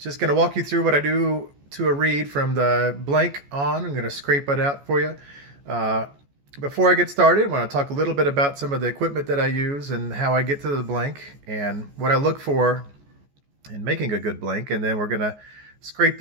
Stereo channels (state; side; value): late; left; 14 ms